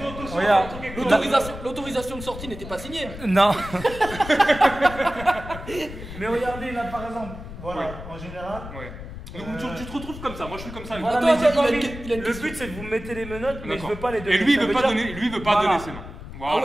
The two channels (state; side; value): noise; left; rumble, 12 dB below the sound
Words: attention, Regarde. attends quelque chose. L'autorisation de sortie n'était pas signée. Non. Mais regardez là par exemple, voilà, en général. Ouais. Donc tu te retrouves comme ça, moi je suis comme ça. Voilà, Attends, mais attends, j'ai pas il a envie- une- il a une le question. but c'est que vous mettez les menottes, mais je D'accord. veux pas les donner. Et lui, il Ça veut pas dire- donner, lui, il veut pas Voilà. donner ses mains. Voilà, Ah